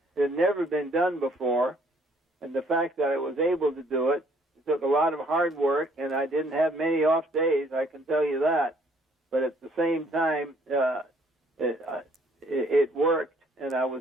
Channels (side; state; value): both; normal; correlation 0.63